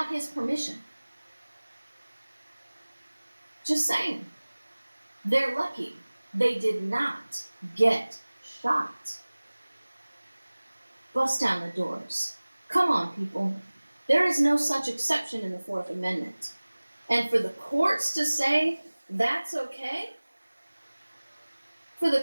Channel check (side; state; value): both; inverted; correlation -1.00